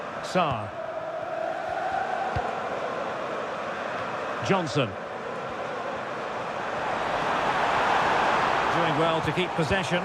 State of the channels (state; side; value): identical; both; correlation 1.00